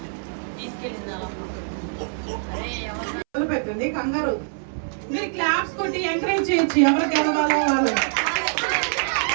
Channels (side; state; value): left; silent; 62 dB below the other